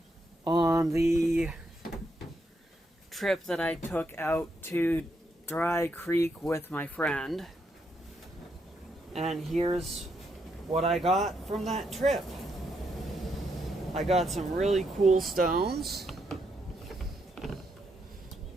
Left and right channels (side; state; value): both; normal; correlation 0.78